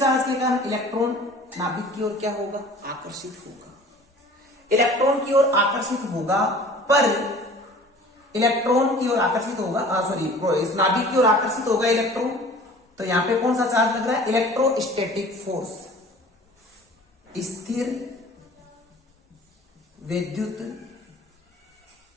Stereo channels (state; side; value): normal; both; correlation 0.46